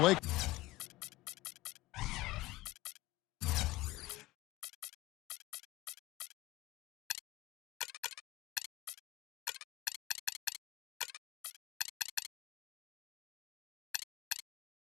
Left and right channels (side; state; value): right; quieter; 18.8 dB